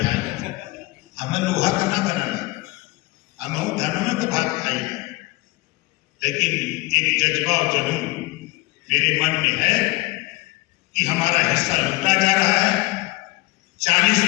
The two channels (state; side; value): quieter; right; 21.9 dB